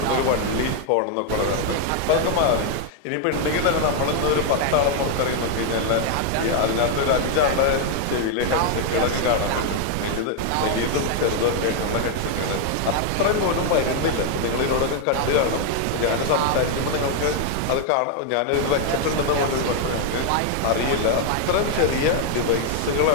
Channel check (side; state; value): both; different; correlation 0.00